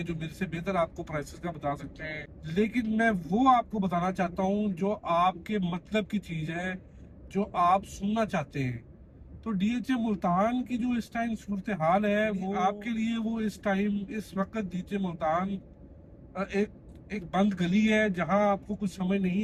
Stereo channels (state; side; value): identical; both; correlation 1.00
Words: जो मेरे से बेहतर आपको प्राइसेस का बता सकते हैं, लेकिन मैं वो आपको बताना चाहता हूँ जो आपके मतलब की चीज़ है, जो आप सुनना चाहते हैं। तो डीएचए मुल्तान की जो इस टाइम सूरत हाल है, वो आपके लिए, वो इस टाइम इस वक्त डीएचए मुल्तान एक एक बंद गली है जहां आपको कुछ समझ